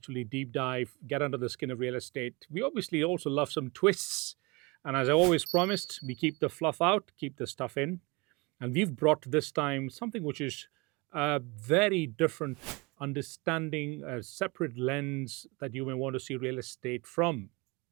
deep dive, get under the skin of real estate. We obviously also love some twists. And as I always promised, we keep the fluff out, keep the stuff in. And we've brought this time something which is a very different understanding, a separate lens that you may want to see real estate from.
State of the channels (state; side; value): quieter; left; 26.4 dB